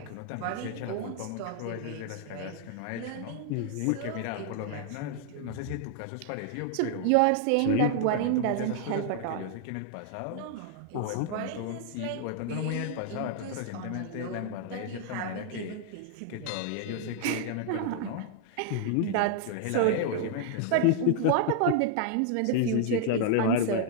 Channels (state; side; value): different; both; correlation 0.00